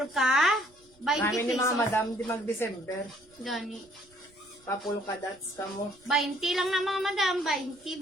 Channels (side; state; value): right; noise; rumble, 30 dB below the sound